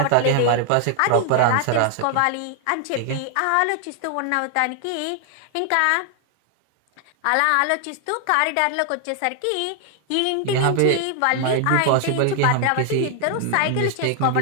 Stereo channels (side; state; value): both; different; correlation 0.00